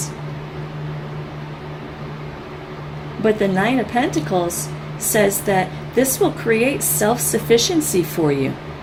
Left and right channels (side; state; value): both; identical; correlation 1.00